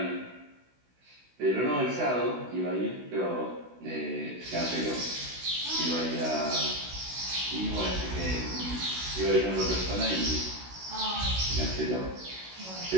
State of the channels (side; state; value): left; late; 16 ms